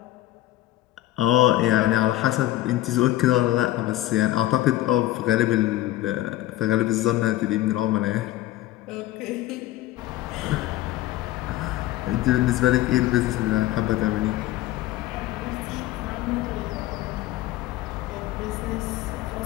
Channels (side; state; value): right; quieter; 15.6 dB